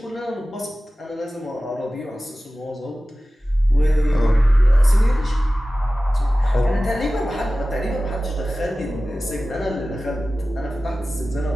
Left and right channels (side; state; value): both; normal; correlation 0.96